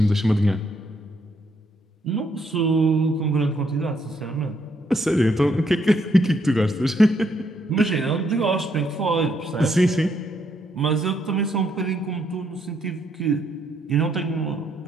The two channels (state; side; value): normal; both; correlation 0.73